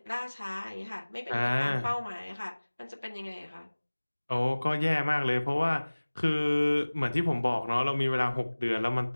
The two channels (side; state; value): both; inverted; correlation -1.00